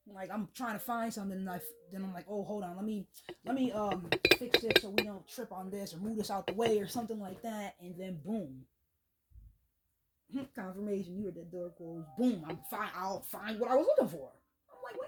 like I'm trying to find something, and then I'm like, oh, hold on, let me fix this so we don't trip on this or move this out the way or something like that, and then boom, confirmation, you heard that door close, boom, I'll find what I was looking for. I'm like,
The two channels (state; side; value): identical; both; correlation 1.00